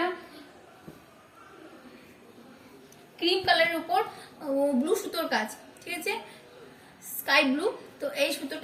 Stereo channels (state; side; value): identical; both; correlation 1.00